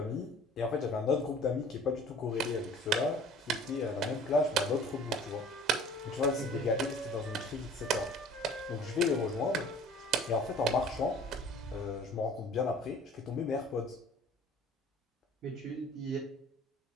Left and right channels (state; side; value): normal; both; correlation 0.48